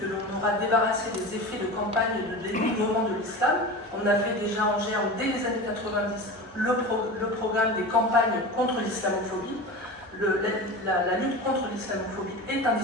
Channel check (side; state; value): left; noise; hum, 29 dB below the sound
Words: que l'on aura débarrassé des effets de campagne et de dénigrement de l'islam. On avait déjà en germe, dès les années 90, le programme des campagnes contre l'islamophobie. la lutte contre l'islamophobie est un